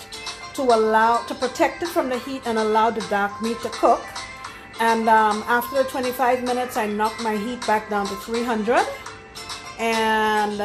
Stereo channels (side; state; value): both; identical; correlation 1.00